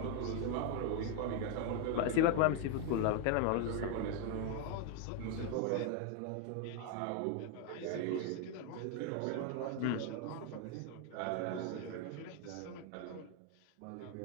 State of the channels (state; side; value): different; both; correlation 0.01